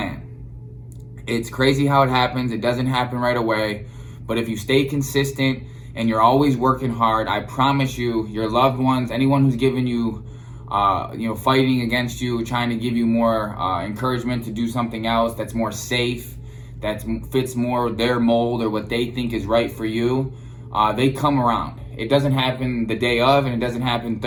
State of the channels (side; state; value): both; identical; correlation 1.00